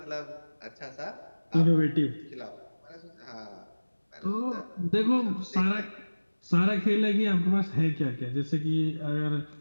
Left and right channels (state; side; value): inverted; both; correlation -1.00